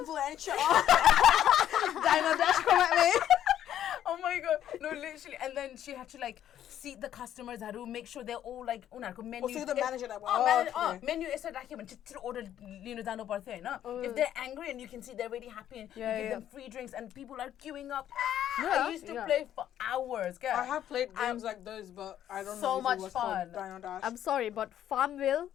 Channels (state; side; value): quieter; right; 11.0 dB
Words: Dino Dash, come at me. oh my God, no, literally. And then she had to like seat the customers. Had to make sure they're all like menu. so you're the manager that okay. Menu is just order dano parthe na. If they're angry and you can see they're really happy and you give them free drinks and people are queuing up. I used to play for hours. I have played games like those, but I don't So know if much it was fun. called Dino Dash. I'm sorry, but Farmville,